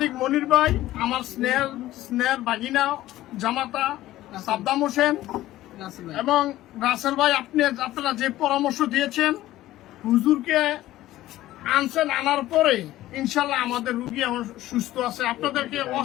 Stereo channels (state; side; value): quieter; right; 15.3 dB